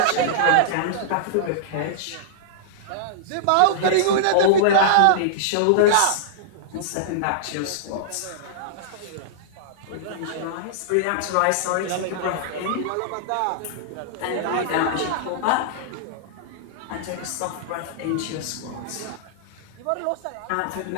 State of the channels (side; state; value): both; different; correlation -0.02